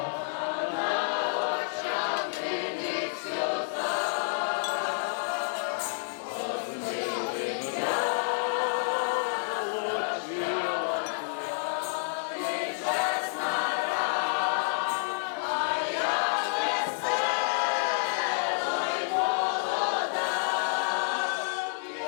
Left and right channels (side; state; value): right; silent; digital silence